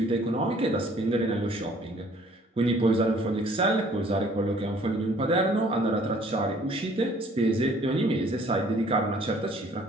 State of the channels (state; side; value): normal; both; correlation 0.57